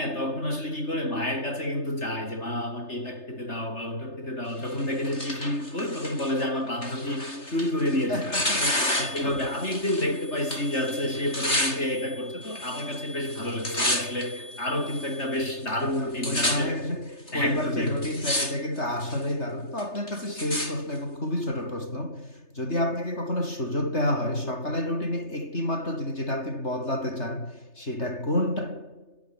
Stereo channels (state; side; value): late; right; 3.3 ms